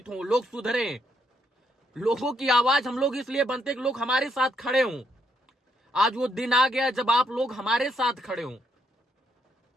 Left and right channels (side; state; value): both; normal; correlation 0.75